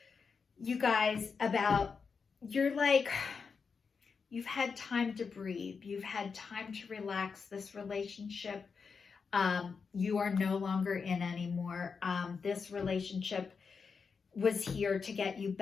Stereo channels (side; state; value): right; quieter; 5.4 dB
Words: you guys, you've had time to breathe. You've had time to relax. This relationship, you are no longer in anymore. This relationship was here to get you